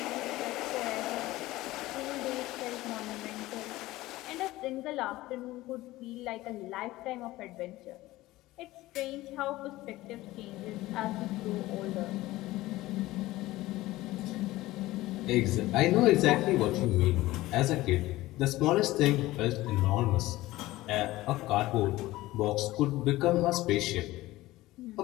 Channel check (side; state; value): right; quieter; 17.7 dB